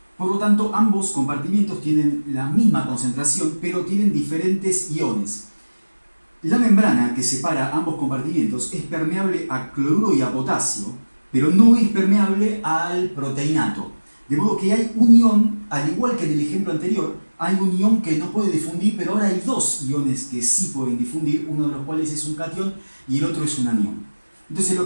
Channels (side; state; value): both; inverted; correlation -1.00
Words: Por lo tanto, ambos compartimientos tienen la misma concentración, pero tienen diferentes iones. La membrana que separa ambos compartimientos es permeable a cloruro y a potasio, pero no es permeable al proteinato. De modo que hay un ion, al igual que en el ejemplo anterior, hay un ion que no puede difundir, pero ahora hay dos iones que sí pueden difundir, uno de los cuales es un catión y el otro es un anión. Entonces